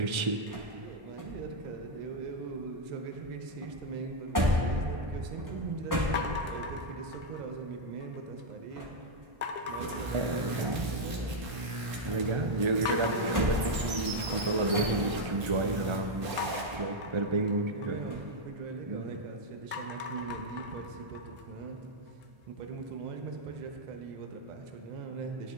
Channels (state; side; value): late; left; 1.8 ms